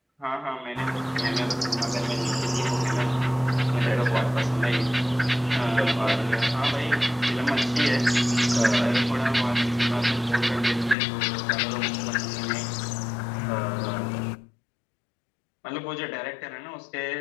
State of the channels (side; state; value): right; drops out; at 11.0 s